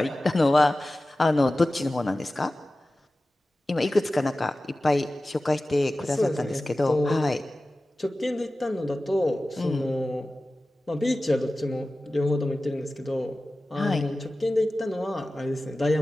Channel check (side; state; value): both; normal; correlation 0.96